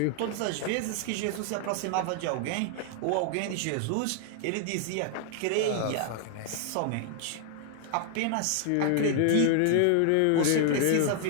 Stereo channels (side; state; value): both; different; correlation 0.00